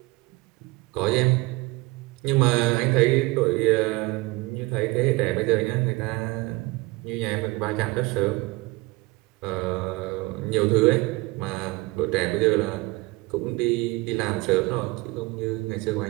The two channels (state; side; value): quieter; left; 22.7 dB